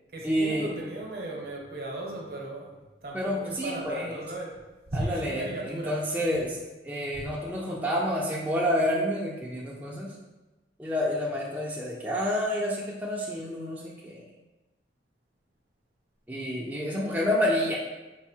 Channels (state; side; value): normal; both; correlation 0.46